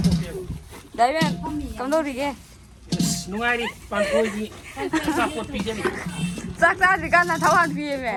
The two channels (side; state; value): both; identical; correlation 1.00